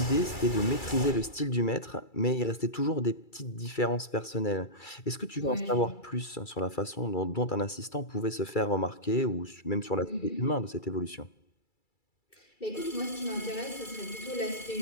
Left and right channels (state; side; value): late; right; 2.3 ms